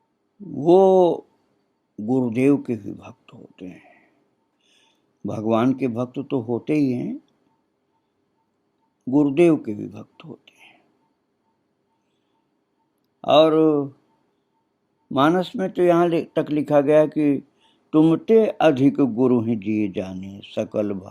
वो गुरुदेव के भी भक्त होते हैं। भगवान के भक्त तो होते ही हैं, गुरुदेव के भी भक्त होते हैं। और मानस में तो यहाँ तक लिखा गया कि तुमते अधिक गुरु ही जिए जाने, सकल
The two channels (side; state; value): both; identical; correlation 1.00